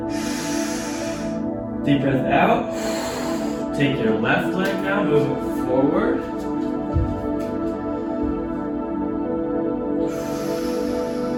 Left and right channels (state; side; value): identical; both; correlation 1.00